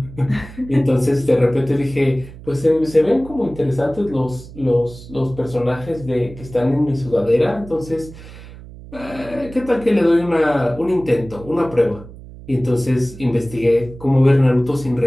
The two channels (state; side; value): noise; right; hum, 17 dB below the sound